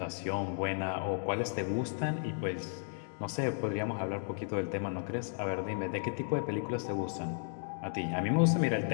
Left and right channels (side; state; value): right; silent; digital silence